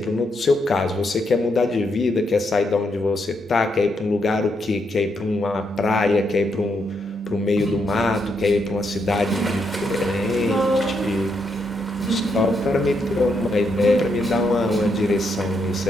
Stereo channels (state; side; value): normal; both; correlation 0.79